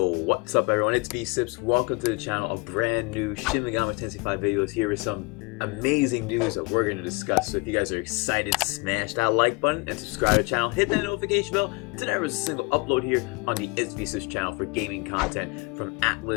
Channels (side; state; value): right; quieter; 27.1 dB